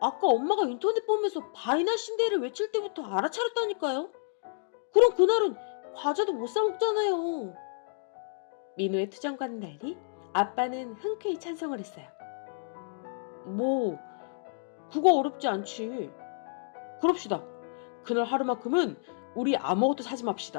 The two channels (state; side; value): silent; right; digital silence